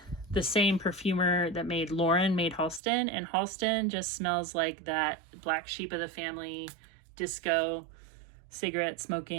the same perfumer that made Lauren made Halston. And Halston just smells like that black sheep of the family, disco, cigarette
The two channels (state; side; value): drops out; left; at 2.8 s